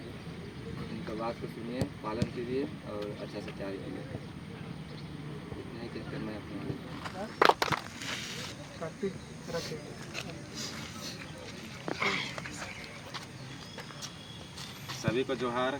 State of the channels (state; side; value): identical; both; correlation 1.00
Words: उनका बात को सुनिए, पालन कीजिए और अच्छा से तैयारी कीजिए। इतना ही कहकर मैं अपने सभी को जोहार,